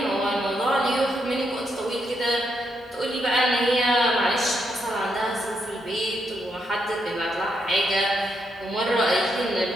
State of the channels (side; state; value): both; normal; correlation 0.80